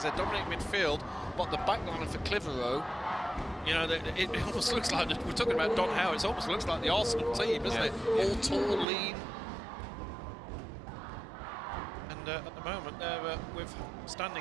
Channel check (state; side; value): drops out; left; at 8.8 s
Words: They're dominating midfield, but the back line for Clitheroe, it almost looks like, we're talking about Don Howe, it almost looks like the Arsenal team, doesn't it? All tall, lean. And at the moment, they're